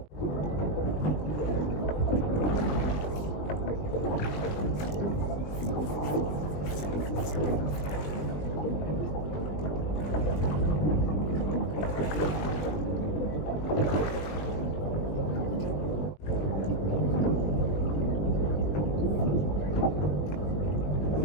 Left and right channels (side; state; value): right; late; 20 ms